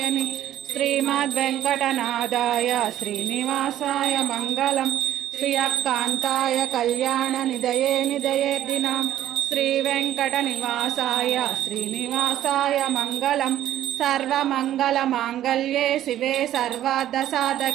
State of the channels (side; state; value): left; quieter; 12.4 dB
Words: श्रीमद्वेङ्कटनाथाय श्रीनिवासाय मङ्गलम् श्रियकान्ताय कल्याणनिधये निधयेर्दिनाम् श्रीवेङ्कटनिवासाय श्रीनिवासाय मङ्गलम् सर्वमङ्गलमाङ्गल्ये शिवे